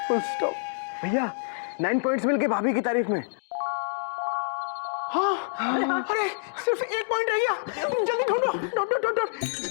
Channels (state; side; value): silent; right; digital silence